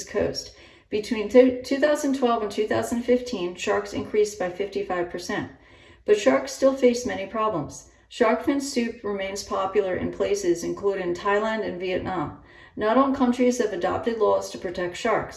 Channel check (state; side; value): identical; both; correlation 1.00